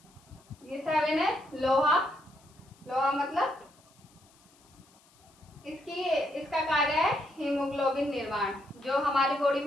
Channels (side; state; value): left; noise; hiss, 29 dB below the sound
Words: ये 7 है लोहा। लोहा मतलब इसका कार्य है हीमोग्लोबिन निर्माण। जो हमारी बॉडी